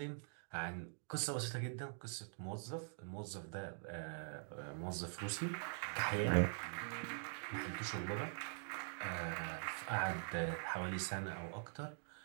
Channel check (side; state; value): left; silent; digital silence